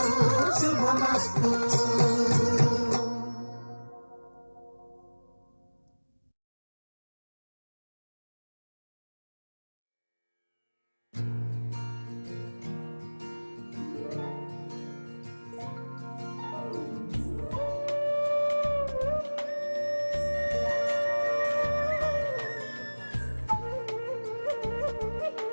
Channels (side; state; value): both; inverted; correlation -1.00